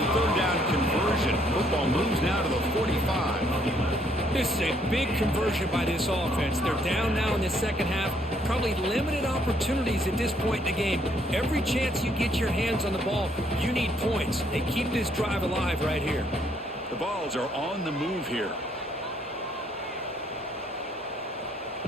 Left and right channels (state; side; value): normal; both; correlation 0.68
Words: third down conversion. Football moves now to the 45. This is a big conversion by this offense. They're down now in the second half. Probably limited opportunities at this point in the game. Every chance you get your hands on the ball, you need points. They keep this drive alive right here. The Vols are on the move here.